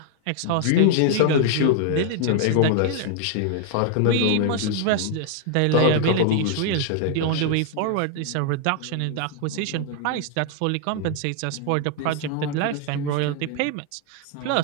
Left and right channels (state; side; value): different; both; correlation 0.00